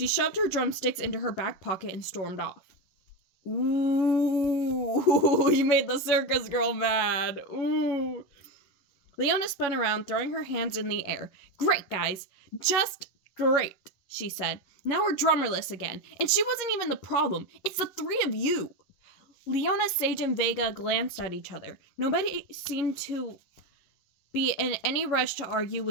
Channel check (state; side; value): late; right; 11 ms